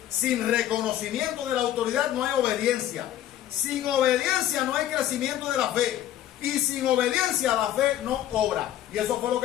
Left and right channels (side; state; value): right; quieter; 12.3 dB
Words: Sin reconocimiento de la autoridad no hay obediencia. Sin obediencia no hay crecimiento de la fe. Y sin obediencia la fe no obra. Y eso fue lo